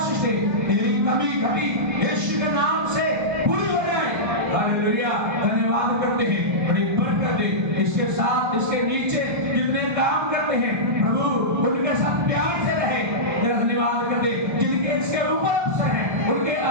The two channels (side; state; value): left; late; 1.3 ms